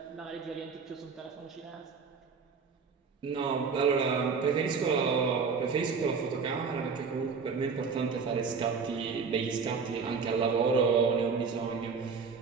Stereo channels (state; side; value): quieter; left; 5.3 dB